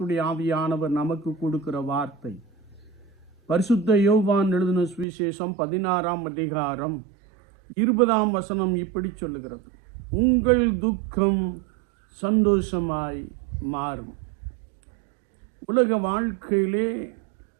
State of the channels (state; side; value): drops out; left; at 5.1 s